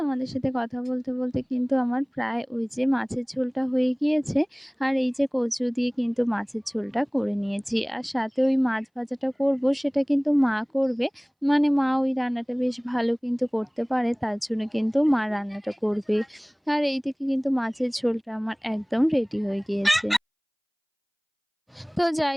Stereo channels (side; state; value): both; identical; correlation 1.00